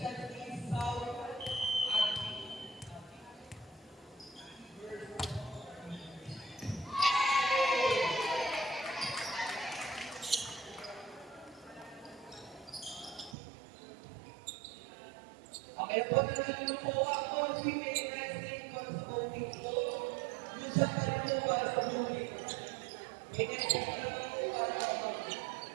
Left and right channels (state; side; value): drops out; left; at 13.4 s